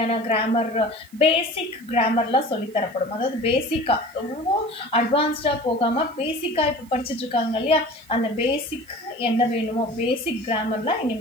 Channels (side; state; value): right; noise; hiss, 27 dB below the sound